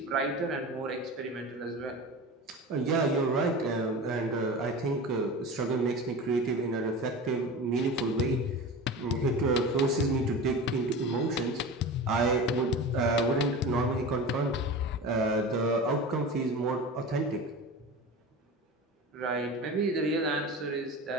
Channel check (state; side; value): normal; both; correlation 0.31